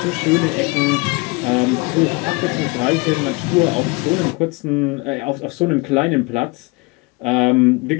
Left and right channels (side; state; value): right; quieter; 26.2 dB